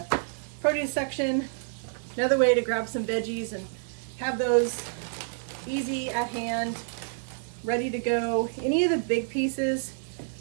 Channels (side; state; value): left; silent; digital silence